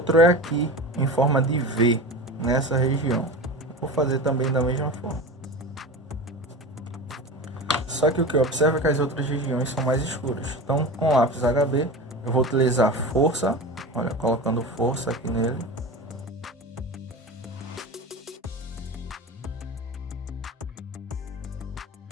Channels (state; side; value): normal; both; correlation 0.30